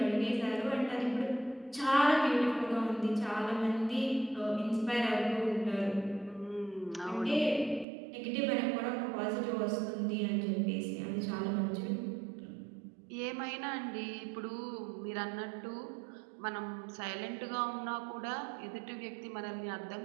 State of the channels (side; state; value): left; drops out; at 7.9 s